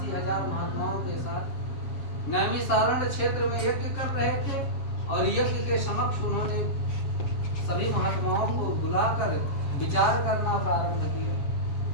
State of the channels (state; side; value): late; right; 7.3 ms